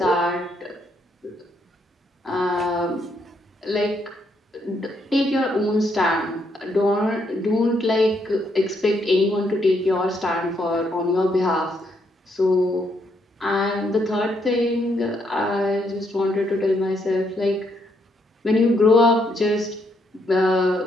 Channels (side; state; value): both; normal; correlation 0.75